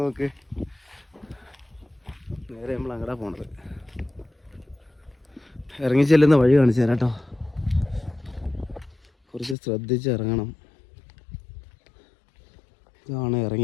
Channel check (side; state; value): right; drops out; at 9.6 s